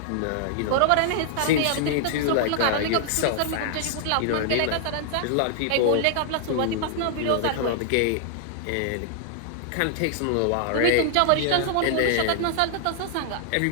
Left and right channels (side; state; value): both; different; correlation -0.01